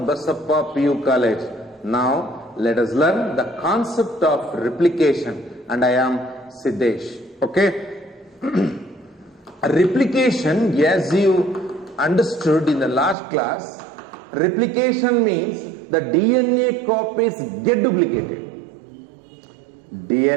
Basappa PU College. Now, let us learn the concept of replication. And I am Siddesh. Okay. Replication, as you understood in the last class, replication means the DNA copies get duplicated.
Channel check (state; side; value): drops out; left; at 13.2 s